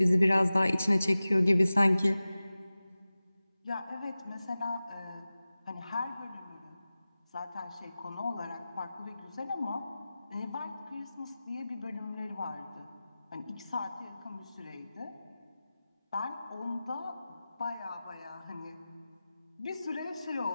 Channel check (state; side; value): inverted; both; correlation -0.96